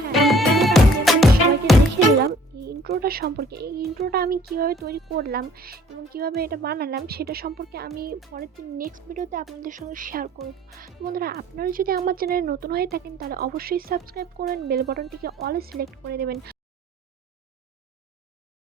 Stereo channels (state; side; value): normal; both; correlation 0.55